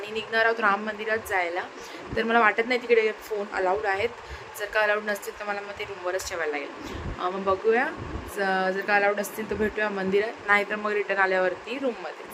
निघणार आहोत राम मंदिरात जायला. तर मला वाटत नाही तिकडे फोन अलाउड आहेत. जर का अलाउड नसतील तर मला मग ते रूमवरच ठेवायला लागेल. मग बघूया, जर का अलाउड असतील तर भेटूया मंदिरात, नाहीतर मग रिटर्न आल्यावरती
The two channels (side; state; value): both; identical; correlation 1.00